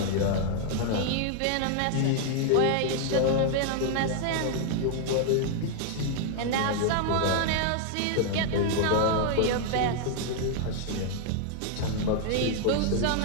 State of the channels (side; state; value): both; different; correlation 0.00